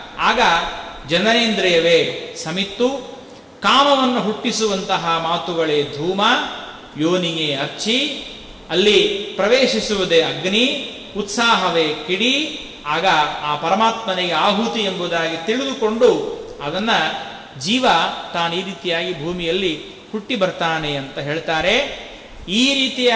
ಆಗ ಜನನೇಂದ್ರಿಯವೇ ಸಮಿತ್ತು. ಕಾಮವನ್ನು ಹುಟ್ಟಿಸುವಂತಹ ಮಾತುಗಳೇ ಧೂಮ, ಯೋನಿಯೇ ಅರ್ಚಿ, ಅಲ್ಲಿ ಪ್ರವೇಶಿಸುವುದೇ ಅಗ್ನಿ, ಉತ್ಸಾಹವೇ ಕಿಡಿ. ಆಗ ಆ ಪರಮಾತ್ಮನಿಗೆ ಆಹುತಿ ಎಂಬುದಾಗಿ ತಿಳಿದುಕೊಂಡು ಅದನ್ನು ಜೀವ ತಾನು ಈ ರೀತಿಯಾಗಿ ಭೂಮಿಯಲ್ಲಿ ಹುಟ್ಟಿ ಬರ್ತಾನೆ ಅಂತ ಹೇಳ್ತಾರೆ. ಈ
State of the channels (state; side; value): identical; both; correlation 1.00